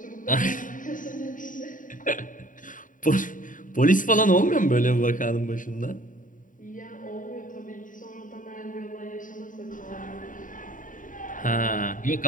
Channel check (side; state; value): right; late; 0.38 ms